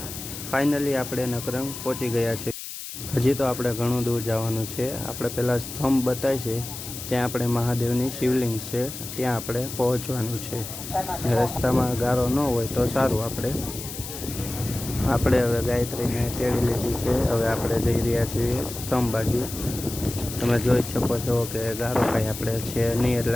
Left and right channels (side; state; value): left; noise; hiss, 9 dB below the sound